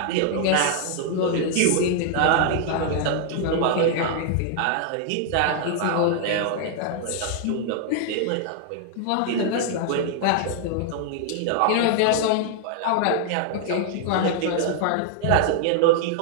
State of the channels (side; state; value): both; different; correlation 0.00